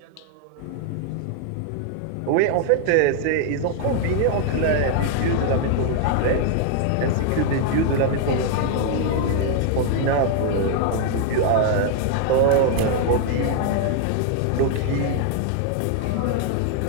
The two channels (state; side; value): different; both; correlation 0.00